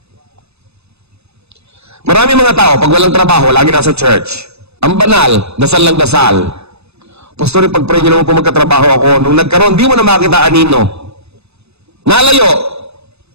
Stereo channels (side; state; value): left; late; 0.80 ms